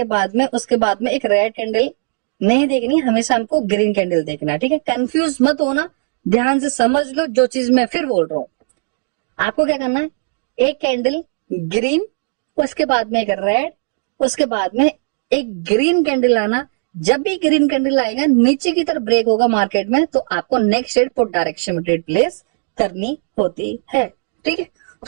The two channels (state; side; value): silent; left; digital silence